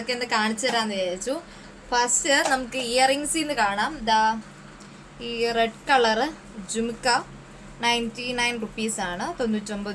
ഒന്ന് കാണിച്ചു തരാമെന്ന് വിചാരിച്ചു. ഫസ്റ്റ് നമുക്ക് ഇയറിങ്സിൽ നിന്ന് കാണാം. ഈ റെഡ് കളറ് ജുംക്ക 99 റുപ്പീസാണ്,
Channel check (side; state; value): both; identical; correlation 1.00